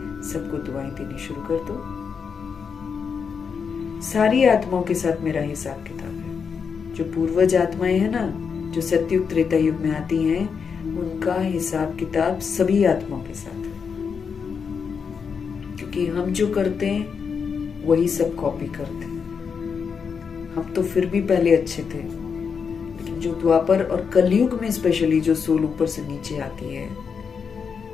सबको दुआएं देनी शुरू कर दो। सारी आत्माओं के साथ मेरा हिसाब किताब है। जो पूर्वज आत्माएं हैं ना, जो सतयुग त्रेता युग में आती हैं, उनका हिसाब किताब सभी आत्माओं के साथ है। क्योंकि हम जो करते हैं वही सब कॉपी करते हैं। हम तो फिर भी पहले अच्छे थे, लेकिन जो द्वापर और कलयुग में स्पेशली जो सोल ऊपर से नीचे आती है,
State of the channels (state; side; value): quieter; right; 6.1 dB